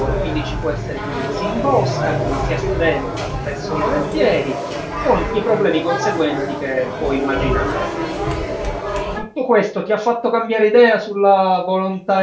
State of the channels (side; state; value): both; identical; correlation 1.00